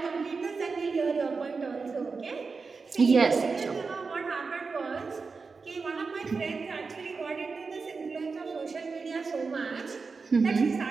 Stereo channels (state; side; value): quieter; left; 4.6 dB